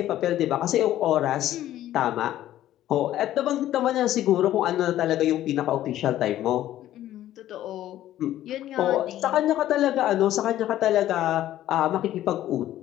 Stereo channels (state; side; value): quieter; right; 13.2 dB